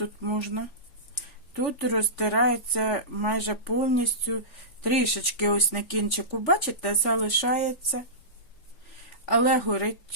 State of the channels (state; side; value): late; right; 3.5 ms